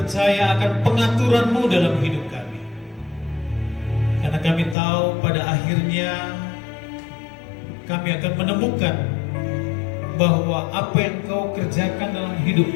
akan pengaturan-Mu dalam hidup kami. Karena kami tahu pada akhirnya kami akan menemukan bahwa apa yang Kau kerjakan dalam hidup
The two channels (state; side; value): drops out; right; at 4.8 s